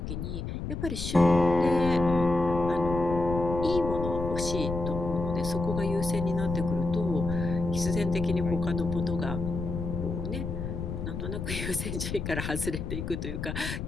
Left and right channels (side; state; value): left; noise; rumble, 5 dB below the sound